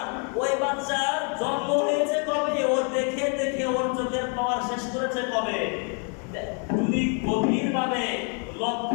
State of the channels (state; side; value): quieter; right; 39.2 dB